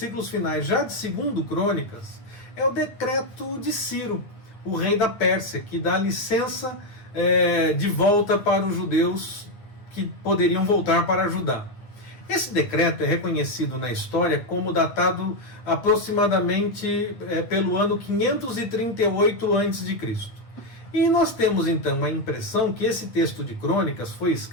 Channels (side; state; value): right; late; 8.9 ms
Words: finais já de 2º Crônicas é o decreto de Ciro, o rei da Pérsia, que dá licença de volta para os judeus que poderiam voltar para Judá. Esse decreto é reconhecido na história como datado aproximadamente pelo ano 538 a.C. E nós temos então a impressão que esse texto de Crônicas foi